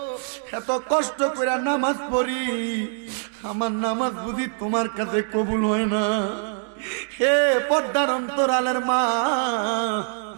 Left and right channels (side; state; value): left; silent; digital silence